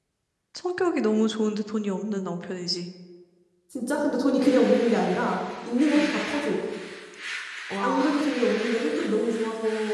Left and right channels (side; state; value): both; identical; correlation 1.00